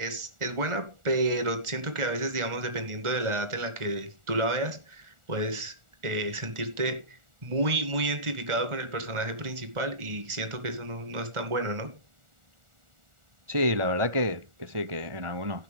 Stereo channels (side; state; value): left; late; 1.4 ms